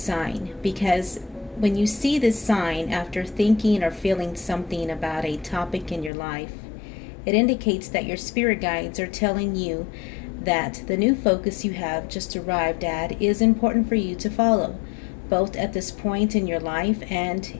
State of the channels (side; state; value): right; drops out; at 6.1 s